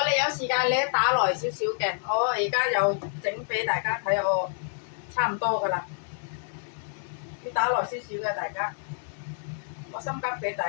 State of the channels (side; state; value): right; silent; digital silence